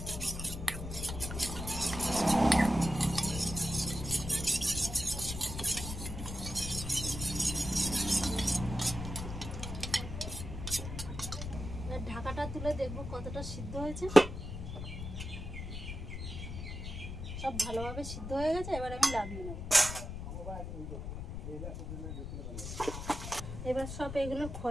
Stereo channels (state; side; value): noise; left; rumble, 7 dB below the sound